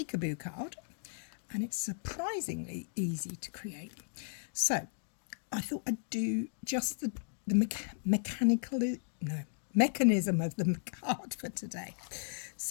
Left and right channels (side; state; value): right; silent; digital silence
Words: card and it's surprisingly easy to create. So I thought I'd do just the mechanism of the card for today.